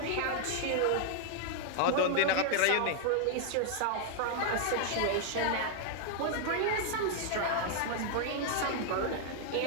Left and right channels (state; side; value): different; both; correlation 0.00